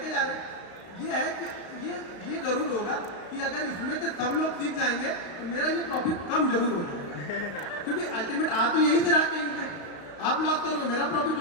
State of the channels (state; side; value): late; right; 35 ms